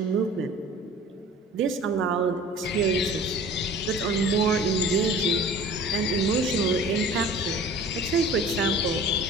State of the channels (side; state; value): both; normal; correlation 0.43